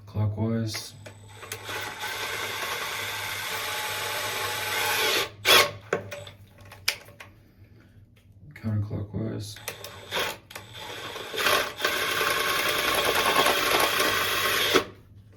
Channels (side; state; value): both; identical; correlation 1.00